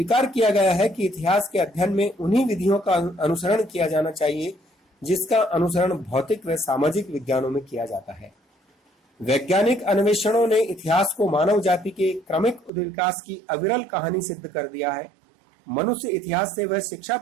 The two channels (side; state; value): left; drops out; at 12.7 s